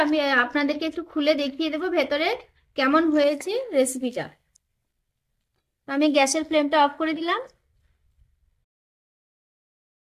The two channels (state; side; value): identical; both; correlation 1.00